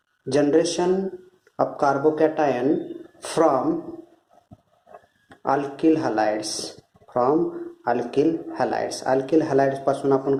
generation of carbocation from alkyl halides. Alkyl halides पासून आपण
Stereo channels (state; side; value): identical; both; correlation 1.00